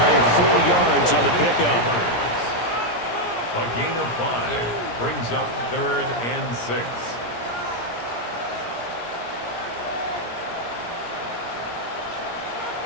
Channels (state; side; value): late; right; 17 ms